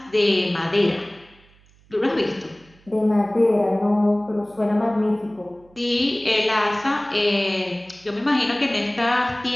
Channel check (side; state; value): right; noise; hum, 30 dB below the sound